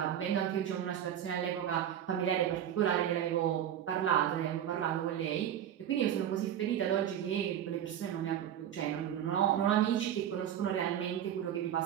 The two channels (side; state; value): left; quieter; 10.3 dB